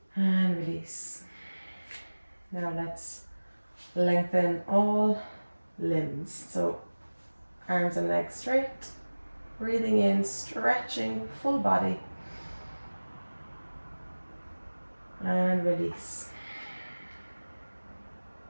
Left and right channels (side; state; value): both; inverted; correlation -1.00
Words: And release. Now let's lengthen all limbs. So arms and legs straight. Breathing in, stretching full body. And release.